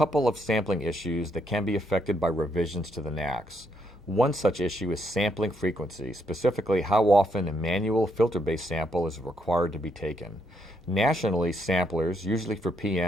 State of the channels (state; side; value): normal; both; correlation 0.74